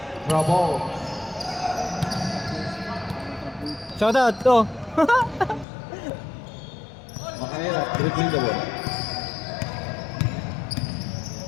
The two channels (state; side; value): drops out; right; at 5.7 s